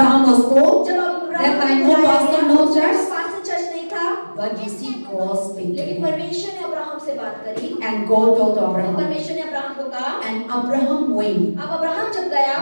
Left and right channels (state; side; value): inverted; both; correlation -1.00